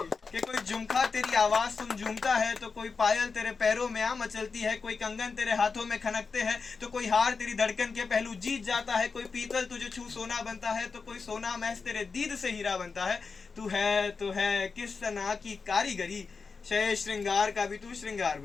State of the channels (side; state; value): right; quieter; 4.8 dB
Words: कोई झुमका तेरी आवाज सुन झूमता है, तो कोई पायल तेरे पैरों में आ मचलती है, कोई कंगन तेरे हाथों में खनकते हैं, तो कोई हार तेरी धड़कन के पहलू जीत जाता है, कोई पीतल तुझे छू सोना बनता है, तो कोई सोना महज तेरे दीद से हीरा बनता है। तू है किस सना की कारीगरी, शय श्रृंगार का भी तू श्रृंगार